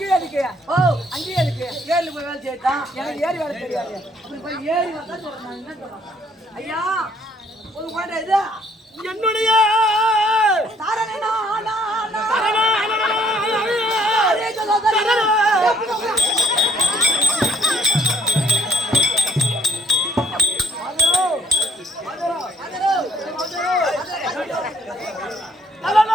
இருக்கு. ஓ அங்கேயே இருக்கு. ஏறி போய் வேலை செய்யத்தான். எனக்கு ஏறி வேலை தெரியாது. அப்படி போய் ஏறி வந்தா சொல்றேன். என்ன சொல்றேன்? ஐயா ஒரு குழந்தை இது என்னுடைய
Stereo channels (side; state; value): both; normal; correlation 0.65